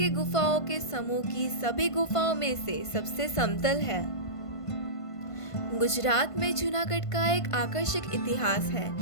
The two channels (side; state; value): right; late; 1.5 ms